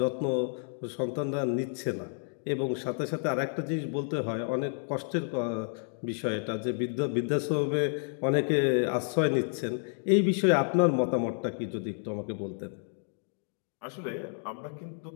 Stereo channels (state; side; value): silent; right; 58 dB below the other